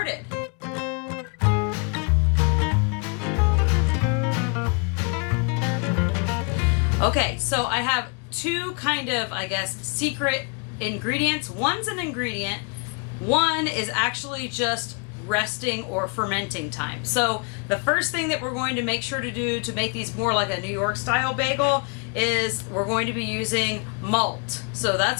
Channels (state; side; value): quieter; right; 37.0 dB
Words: Okay, so I have two kind of, secret ingredients. One's an ingredient, one is actually just resting or fermenting time. So the first thing that we're going to make sure to do to make these more like a New York style bagel is we're going to be using malt. So